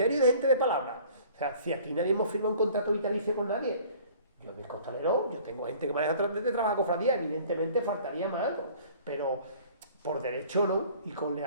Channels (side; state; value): both; inverted; correlation -0.50